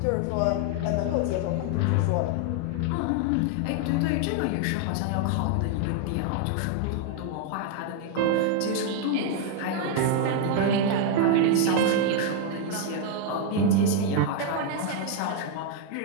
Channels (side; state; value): both; different; correlation 0.00